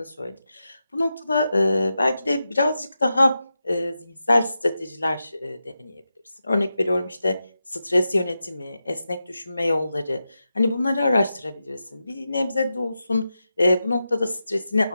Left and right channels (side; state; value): both; inverted; correlation -0.90